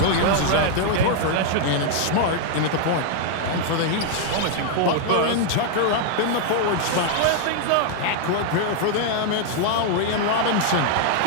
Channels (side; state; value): both; different; correlation 0.00